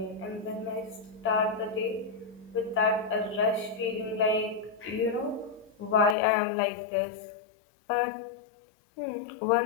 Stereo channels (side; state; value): right; drops out; at 6.2 s